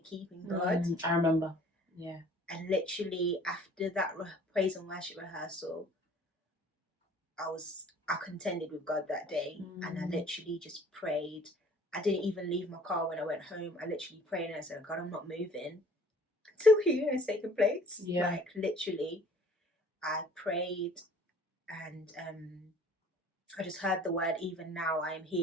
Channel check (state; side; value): normal; both; correlation 0.53